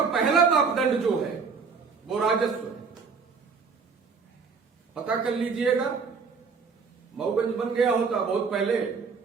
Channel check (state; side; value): quieter; left; 5.3 dB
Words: पहला मापदंड जो है वो राजस्व है। पता कर लीजिएगा, मऊगंज बन गया होता बहुत पहले,